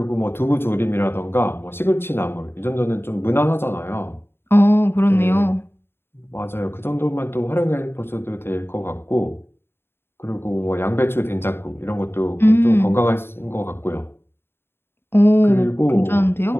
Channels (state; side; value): late; right; 0.11 ms